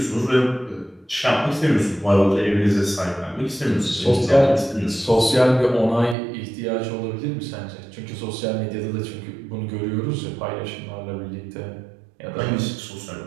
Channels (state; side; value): drops out; left; at 6.2 s